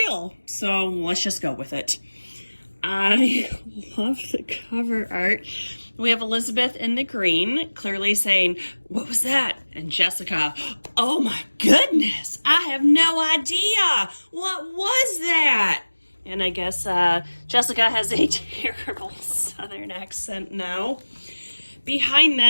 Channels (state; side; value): inverted; both; correlation -1.00